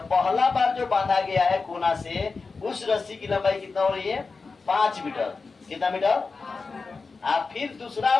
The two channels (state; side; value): quieter; right; 4.3 dB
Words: पहला बार जो बांधा गया है कोना से, उस रस्सी की लंबाई कितना हो रही है? 5 मीटर। कितना मीटर? आप फिर